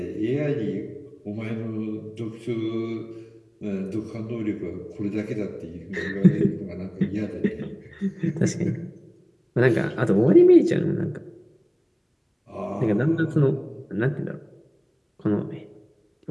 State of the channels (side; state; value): both; identical; correlation 1.00